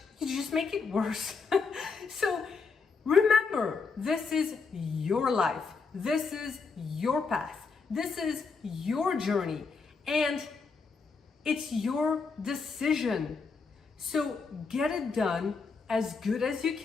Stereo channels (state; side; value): quieter; right; 4.8 dB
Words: you just make it worse. So remember, this is your life. This is your path. This is your journey. And it's your decision. So get it done as good as you